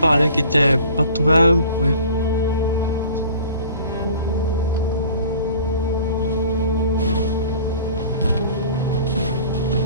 qui était pas trouvable, oui.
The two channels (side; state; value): both; inverted; correlation -0.46